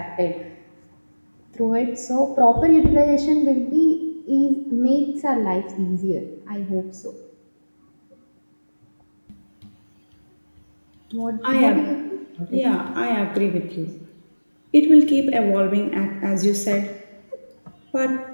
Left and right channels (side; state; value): both; inverted; correlation -1.00